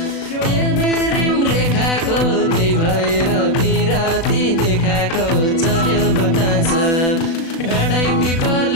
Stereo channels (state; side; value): late; right; 36 ms